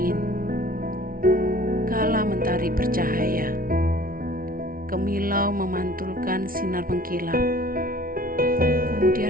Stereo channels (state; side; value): late; left; 0.42 ms